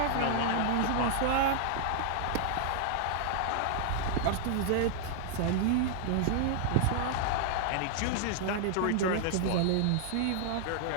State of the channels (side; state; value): both; different; correlation -0.01